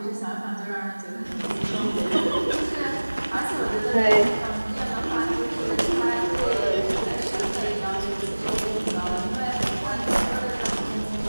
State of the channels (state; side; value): inverted; both; correlation -1.00